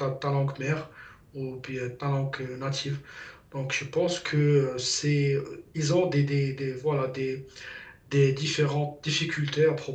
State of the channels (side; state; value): both; identical; correlation 1.00